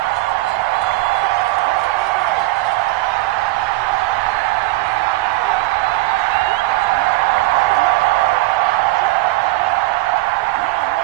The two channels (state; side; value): quieter; left; 20.0 dB